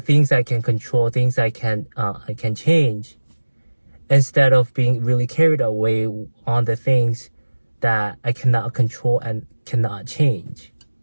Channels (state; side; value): inverted; both; correlation -1.00